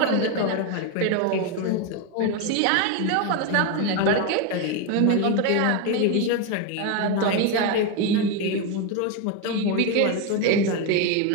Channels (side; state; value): both; different; correlation 0.02